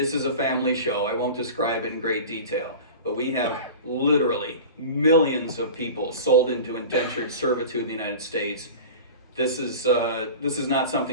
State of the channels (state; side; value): inverted; both; correlation -0.35